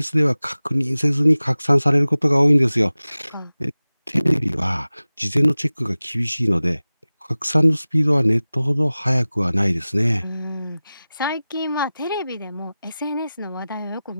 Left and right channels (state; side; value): inverted; both; correlation -0.97